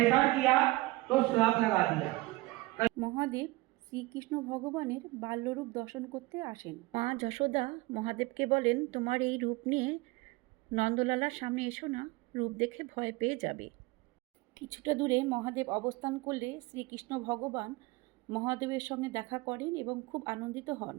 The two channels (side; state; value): left; quieter; 21.4 dB